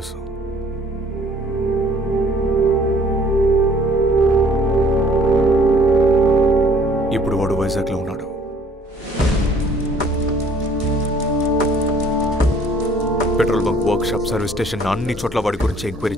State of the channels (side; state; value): both; normal; correlation 0.56